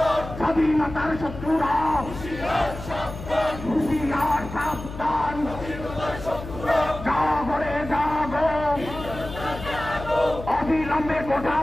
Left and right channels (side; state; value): left; noise; hum, 11 dB below the sound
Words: স্বাধীনতার শত্রুরা হুঁশিয়ার সাবধান জাগরে জাগো অবিলম্বে কোঠা